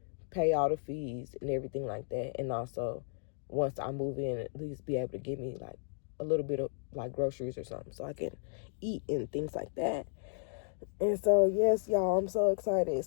pay all the fees and everything like that. And also, once I move in, at least be able to give me like a little bit of like groceries or something so I can eat and things like that. And so, yes, y'all, I'm so excited.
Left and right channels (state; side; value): silent; right; digital silence